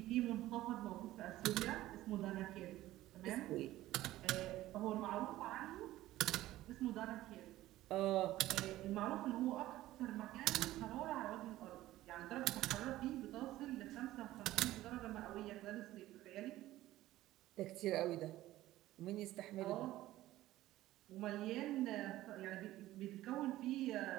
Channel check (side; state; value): left; quieter; 15.6 dB